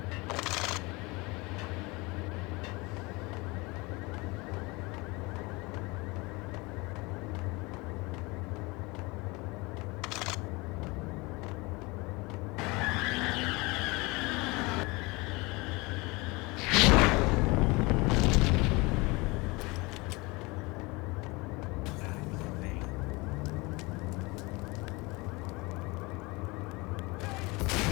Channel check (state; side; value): quieter; right; 24.9 dB